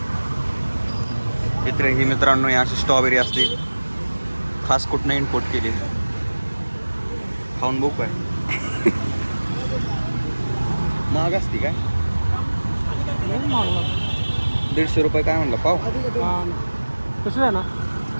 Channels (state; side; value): inverted; both; correlation -1.00